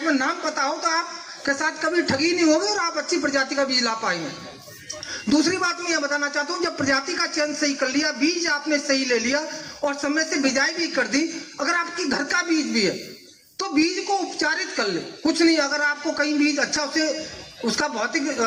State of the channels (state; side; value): identical; both; correlation 1.00